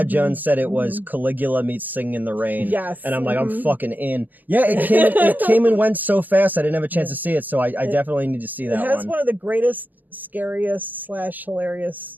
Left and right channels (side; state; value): left; late; 0.085 ms